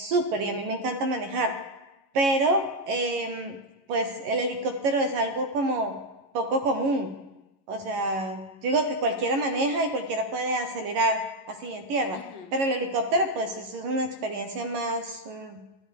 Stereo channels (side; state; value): left; late; 11 ms